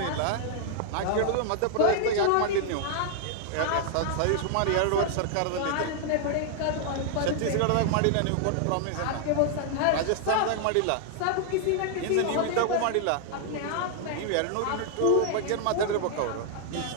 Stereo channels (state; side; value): different; both; correlation 0.00